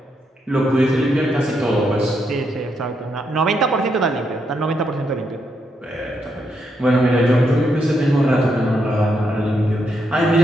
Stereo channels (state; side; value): normal; both; correlation 0.80